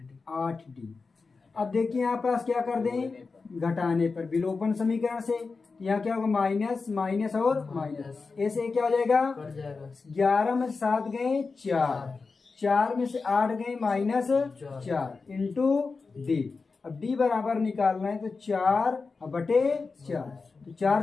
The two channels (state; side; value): quieter; right; 4.4 dB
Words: अब देखिए यहाँ पास क्या कर दें, घटाने पर विलोपन समीकरण से यहाँ क्या होगा माइनस माइनस और माइनस, ऐसे क्या हो जाएगा 11 में से 7 गए 4, 4 में से 8 गए -4 इंटू डी। अब डी बराबर निकालना है तो 4 बटे 4, तो 4